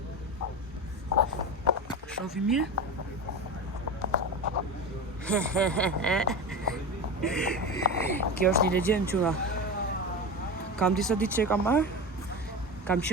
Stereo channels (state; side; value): normal; both; correlation 0.24